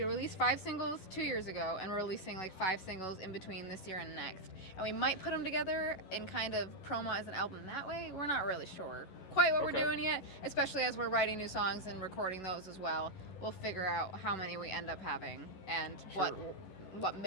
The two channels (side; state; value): right; late; 11 ms